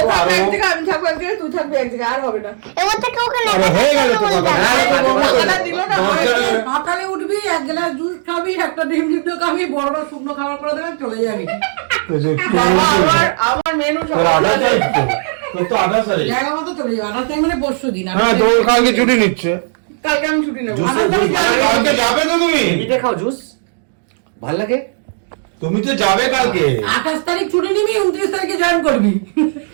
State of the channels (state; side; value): silent; left; digital silence